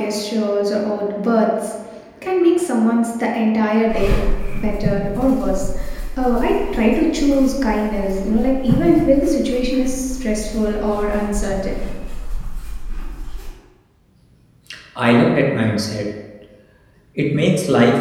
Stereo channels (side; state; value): both; identical; correlation 1.00